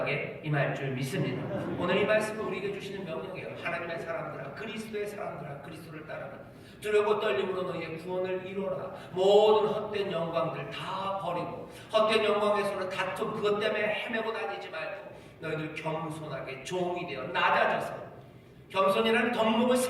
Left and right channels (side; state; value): both; identical; correlation 1.00